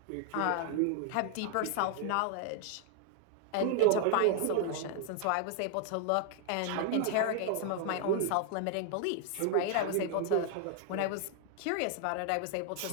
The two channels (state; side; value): different; both; correlation 0.00